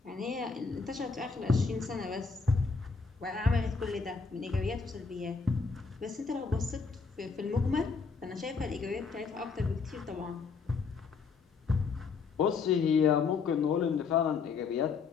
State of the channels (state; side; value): quieter; right; 5.0 dB